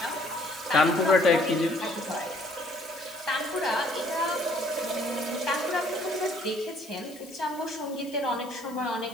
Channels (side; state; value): left; noise; hiss, 20 dB below the sound